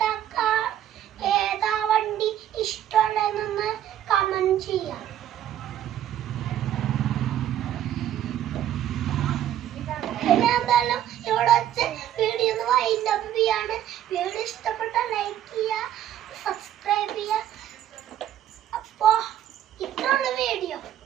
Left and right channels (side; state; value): left; quieter; 11.4 dB